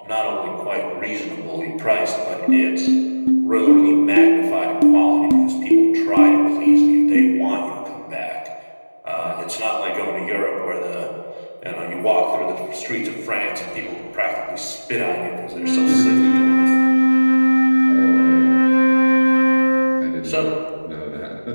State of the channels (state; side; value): inverted; both; correlation -1.00